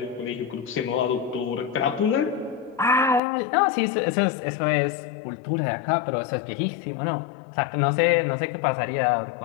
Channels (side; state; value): right; drops out; at 3.2 s